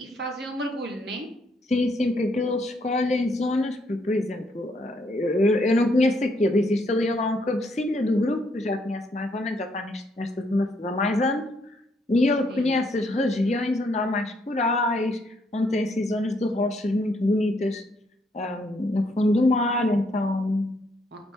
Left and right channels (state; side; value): normal; both; correlation 0.72